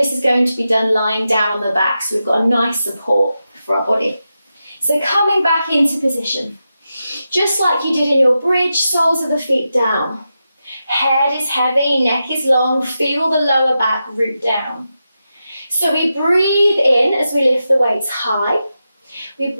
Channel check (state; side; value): inverted; both; correlation -0.89